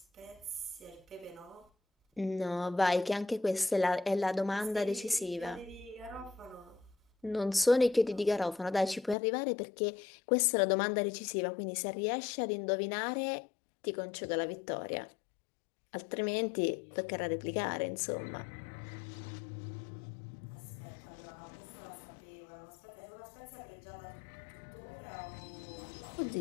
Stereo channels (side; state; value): right; drops out; at 9.2 s